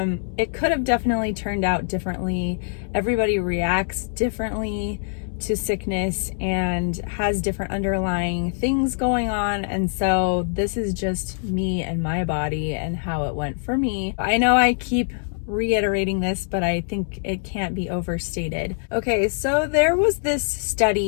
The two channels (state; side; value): silent; right; 63 dB below the other